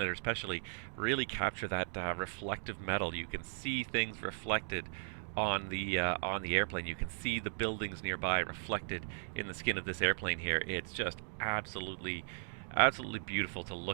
especially really capture that reflective metal. You can see things reflected on the airplane. You can see the buildings nearby reflected in the skin of this airplane here. It's just absolutely beautiful to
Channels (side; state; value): left; silent; digital silence